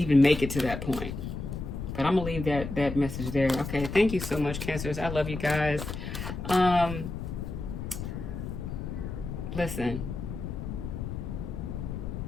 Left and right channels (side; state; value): left; noise; rumble, 6 dB below the sound